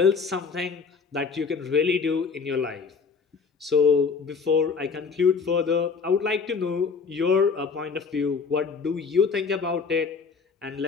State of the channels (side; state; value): right; quieter; 5.3 dB